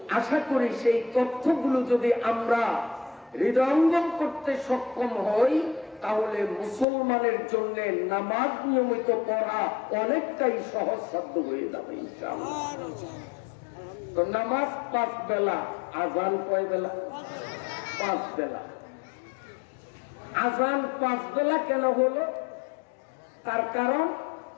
আশা করি সেই তথ্যগুলো যদি আমরা হৃদয়ঙ্গম করতে সক্ষম হই, তাহলে মুসলমানের জন্য নামাজ নিয়মিত পড়া অনেকটাই সহজসাধ্য হয়ে যাবে ইনশাআল্লাহ। তো নামাজ 5 বেলা, আজান কয় বেলা? 5 বেলা। আজান 5 বেলা কেন হলো? তার কারণ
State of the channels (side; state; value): right; drops out; at 6.9 s